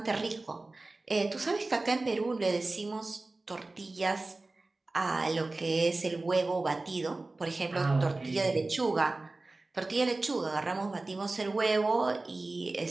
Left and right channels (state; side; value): quieter; left; 3.2 dB